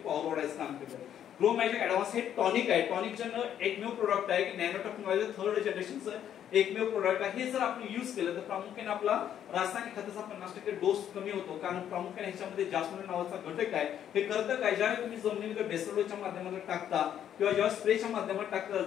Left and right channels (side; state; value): right; quieter; 10.0 dB